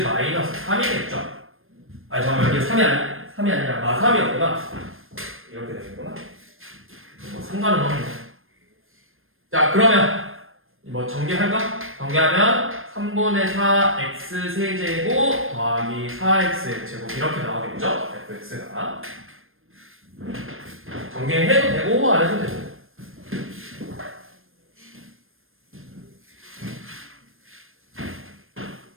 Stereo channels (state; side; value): late; left; 0.60 ms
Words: 마이너스 3이겠죠? 아니 잠깐만 여기 3이 아니라 마3이었구나. 이렇게 되겠구나. 뭐 상관은 없네. 자 그러면 뭐 전개할까? 전개하면 3분의 4 x 세제곱 더하기 4x 제곱 이렇게 나오겠죠? fx가 전개해도 되고 안 해도 되고.